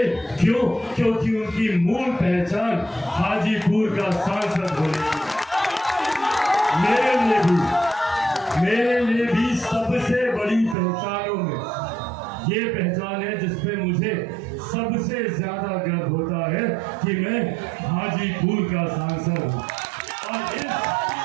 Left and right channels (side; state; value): left; drops out; at 10.8 s